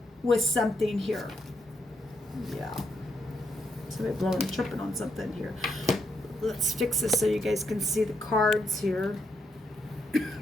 with something here. Yeah. Somebody blowing a trumpet on something here. let's fix this so you guys can see the cards here.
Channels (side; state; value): both; normal; correlation 0.79